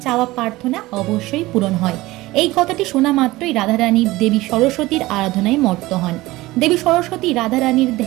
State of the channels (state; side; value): quieter; left; 19.0 dB